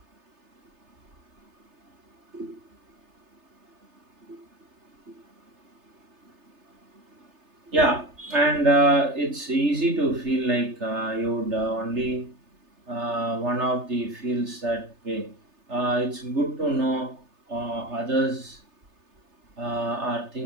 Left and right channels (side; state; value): left; late; 3.3 ms